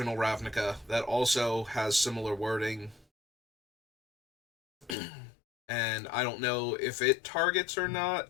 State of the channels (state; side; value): drops out; right; at 5.0 s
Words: Ravnica, that also has similar wording. And I don't know if it targets or